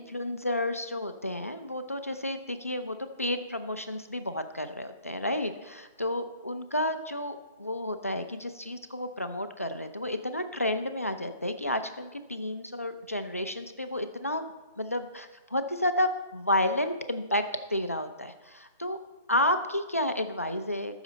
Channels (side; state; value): both; inverted; correlation -0.53